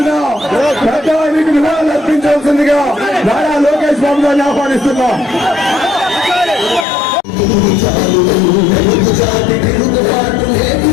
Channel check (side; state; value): right; drops out; at 6.9 s